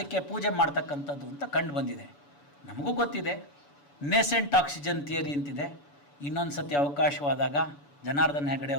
ಪೂಜೆ ಮಾಡ್ತಕ್ಕಂಥದ್ದು ಅಂತ ಕಂಡು ಬಂದಿದೆ. ನಮಗೂ ಗೊತ್ತಿದೆ ನೇಸೆಂಟ್ ಆಕ್ಸಿಜನ್ ಥಿಯರಿ ಅಂತಿದೆ. ಇನ್ನೊಂದು ಸತಿ ಅವಕಾಶವಾದಾಗ ಜನಾರ್ದನ್ ಹೆಗಡೆ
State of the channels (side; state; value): right; late; 7.0 ms